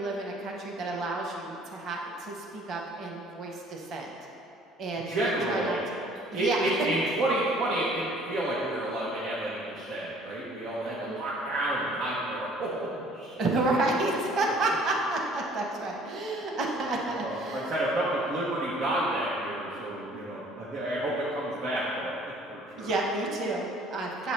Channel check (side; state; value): both; normal; correlation 0.55